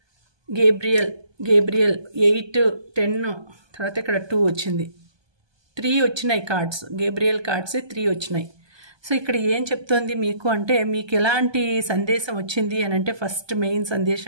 గేబ్రియల్ 8, 10, తర్వాత ఇక్కడ 2 వచ్చింది, 3 వచ్చినాయి కార్డ్స్, గేబ్రియల్ కార్డ్స్ 3 వచ్చినాయి. సో ఇక్కడ ఏం చెప్తోంది మీకు అంటే మీకు ఎలాంటి సందేశం వచ్చింది అని అంటే ఫస్ట్ మెయిన్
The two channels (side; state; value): left; late; 1.2 ms